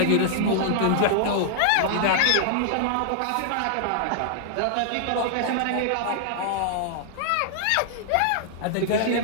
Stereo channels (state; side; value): different; both; correlation -0.01